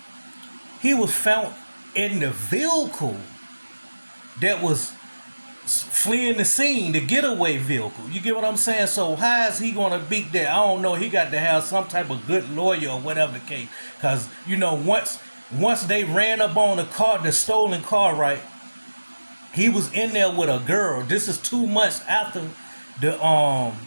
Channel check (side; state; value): both; inverted; correlation -1.00